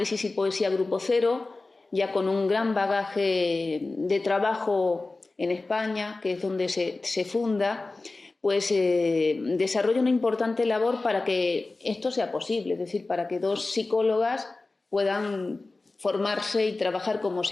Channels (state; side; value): quieter; right; 3.3 dB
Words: y Poesía Grupo Cero, ya con un gran bagaje de trabajo en España, que es donde se funda, pues desarrolla una importante labor para que esto sea posible, es decir, para que dos psicólogas puedan formarse y trabajar como